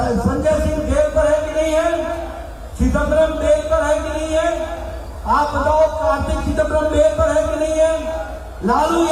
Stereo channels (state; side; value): identical; both; correlation 1.00